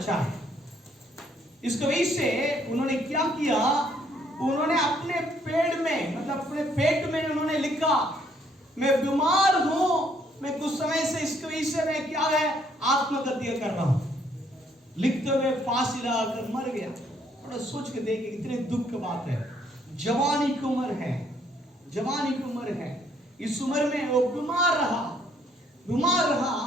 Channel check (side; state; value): both; normal; correlation 0.67